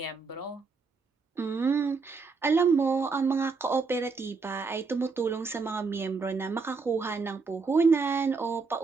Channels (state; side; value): quieter; left; 4.6 dB